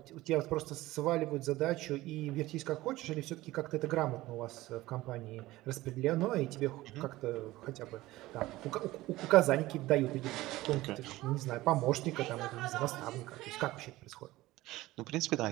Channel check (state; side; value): quieter; left; 17.8 dB